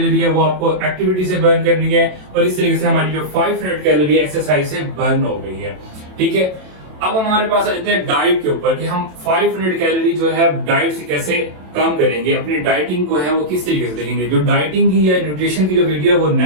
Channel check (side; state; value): left; late; 27 ms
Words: है वो आपको एक्टिविटी से बर्न करनी है, और इस तरीके से हमारी जो 500 कैलोरी एक्सरसाइज से बर्न हो गई है, ठीक है। अब हमारे पास आ जाते हैं डाइट के ऊपर कि हम 500 कैलोरी जो है डाइट से कैसे कम करेंगे, अपनी डाइटिंग को है वो किस तरीके से देखेंगे। जो डाइटिंग की या न्यूट्रिशन की जो वीडियो है वो